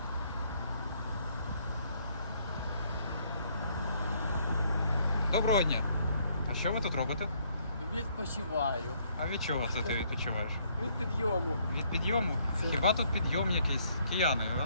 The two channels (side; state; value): both; inverted; correlation -0.68